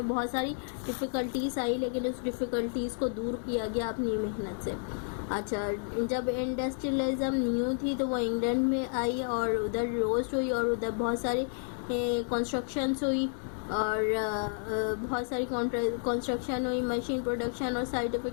बहुत सारी डिफ़िकल्टीज़ आई, लेकिन उस डिफ़िकल्टीज़ को दूर किया गया अपनी मेहनत से। अच्छा, जब इंडस्ट्रियलिज्म न्यू थी तो वो इंग्लैंड में आई और उधर रोस्ट हुई और उधर बहुत सारी कंस्ट्रक्शंस हुई और बहुत सारी कंस्ट्रक्शन हुई, मशीन प्रोडक्शन और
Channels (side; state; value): right; silent; 57 dB below the other